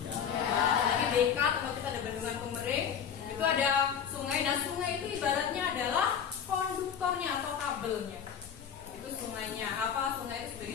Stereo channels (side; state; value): right; quieter; 7.9 dB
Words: Ya. Lagi BK tempat kita ada bendungan Pemering, itu ada sungai. Nah, sungai itu ibaratnya adalah konduktornya atau kabelnya. Itu sungainya. Apa? Sungai itu